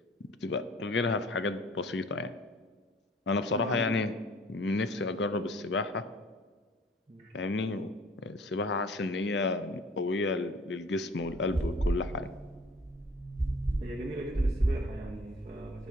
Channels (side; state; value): both; normal; correlation 0.51